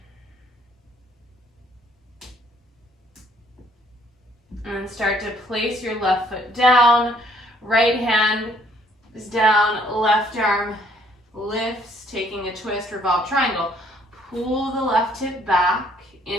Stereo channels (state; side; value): normal; both; correlation 0.64